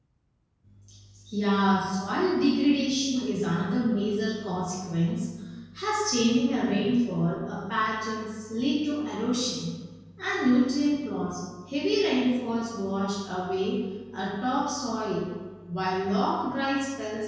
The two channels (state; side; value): identical; both; correlation 1.00